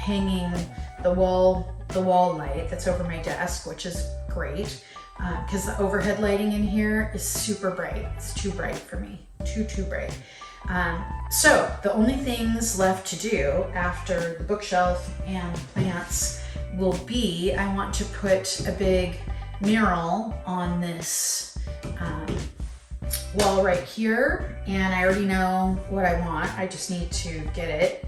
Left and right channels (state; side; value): identical; both; correlation 1.00